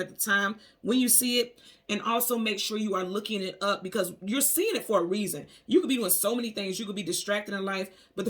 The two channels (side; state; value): both; identical; correlation 1.00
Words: the time when you see it, and also make sure you are looking it up, because you're seeing it for a reason. You could be doing so many things, you could be distracted in life, but the